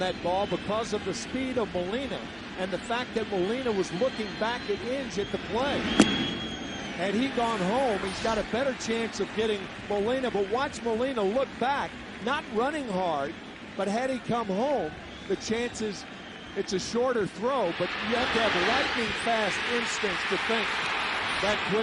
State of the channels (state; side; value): identical; both; correlation 1.00